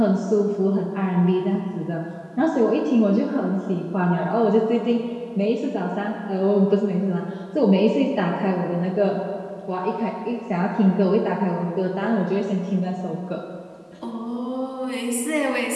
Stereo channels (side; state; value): both; identical; correlation 1.00